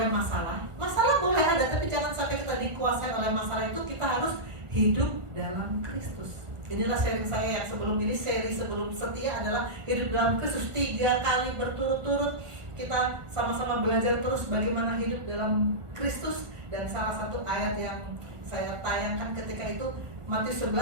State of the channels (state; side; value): late; left; 1.4 ms